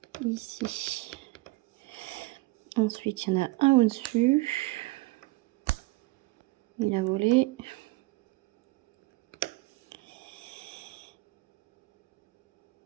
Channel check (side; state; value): left; quieter; 22.2 dB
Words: Ici. Ensuite, il y en a un au-dessus. Il a volé.